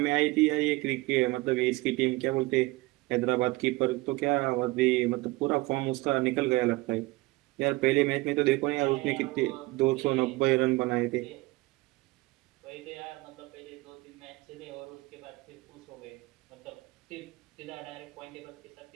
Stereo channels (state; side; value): quieter; left; 21.6 dB